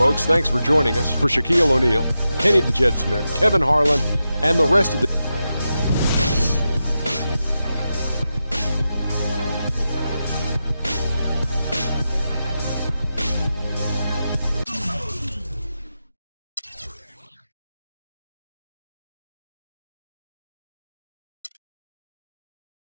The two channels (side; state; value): both; inverted; correlation -0.90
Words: Thanks for joining us. For Shaquille O'Neal, Kenny the Jet Smith, Kevin Harlan, and the rest of the